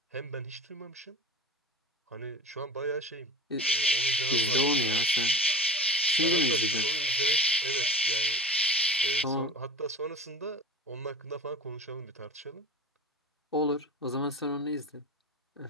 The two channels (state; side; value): normal; both; correlation 0.31